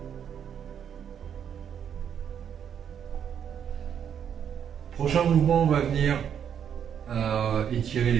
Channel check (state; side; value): quieter; left; 8.4 dB